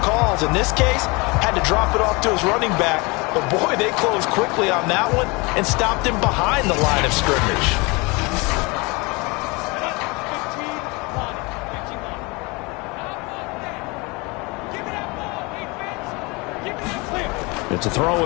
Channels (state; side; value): quieter; right; 26.7 dB